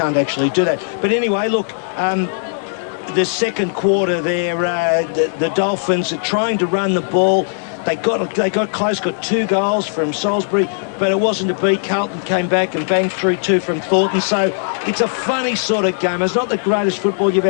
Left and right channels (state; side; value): silent; right; digital silence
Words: actually do that. But anyway, look, the second quarter there, the Dolphins are trying to run the ball. They got close, got 2 goals from Salisbury. but it wasn't to be. Carlton came back and banged through 2 from Thornton. So it's a funny sort of game. It's not the greatest football you've